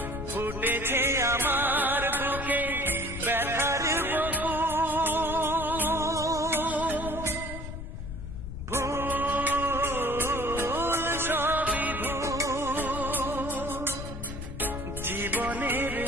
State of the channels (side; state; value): left; noise; rumble, 8 dB below the sound